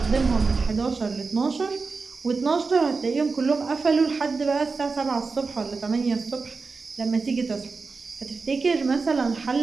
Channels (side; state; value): left; quieter; 4.4 dB